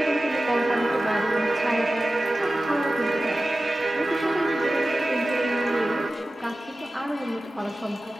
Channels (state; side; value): normal; both; correlation 0.95